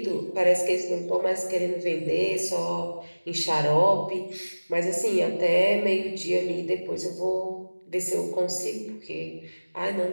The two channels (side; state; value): both; inverted; correlation -1.00